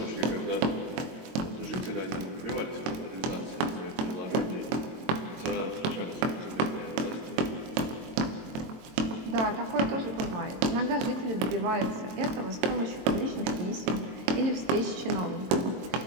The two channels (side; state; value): left; late; 22 ms